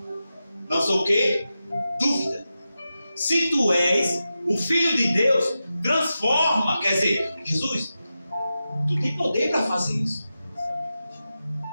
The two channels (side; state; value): both; inverted; correlation -0.91